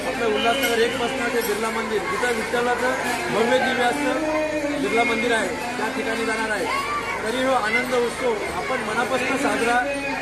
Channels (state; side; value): noise; left; hum, 22 dB below the sound